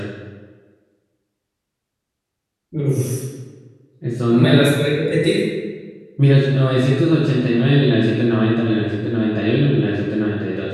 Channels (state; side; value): identical; both; correlation 1.00